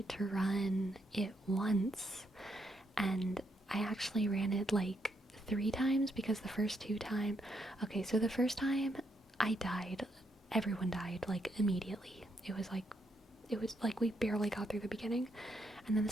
to run it once, and I actually ran it like 3 times because the first 2 times... Okay, so the first time I died, everyone died like immediately. It was like we barely got through the beginning. And then the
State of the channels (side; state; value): both; normal; correlation 0.77